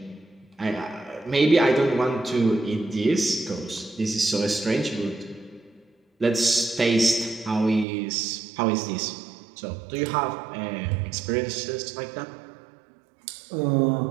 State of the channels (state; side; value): drops out; left; at 7.9 s